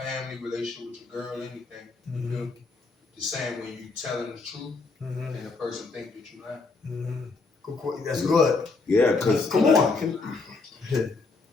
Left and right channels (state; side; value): quieter; right; 4.0 dB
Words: relationship with your girl, anything. You feel me? Just saying when you telling the truth and the person think that you lying. That's good. Yeah, because Come on.